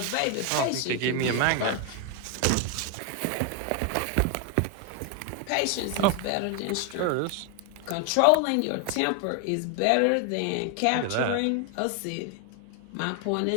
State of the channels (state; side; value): different; both; correlation 0.01